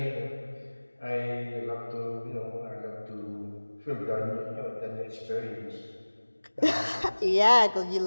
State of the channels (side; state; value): both; inverted; correlation -1.00